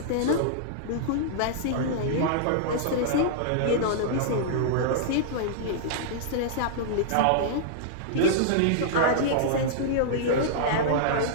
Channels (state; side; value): different; both; correlation -0.02